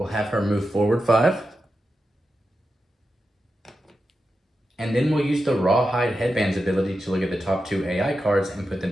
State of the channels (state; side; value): normal; both; correlation 0.90